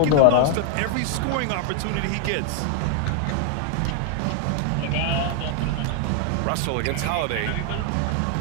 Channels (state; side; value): different; both; correlation 0.00